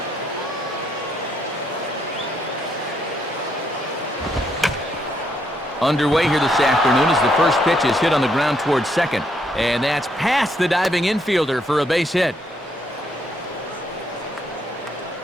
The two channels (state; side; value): normal; both; correlation 0.74